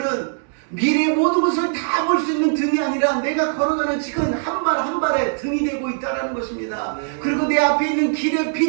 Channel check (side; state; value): left; silent; 65 dB below the other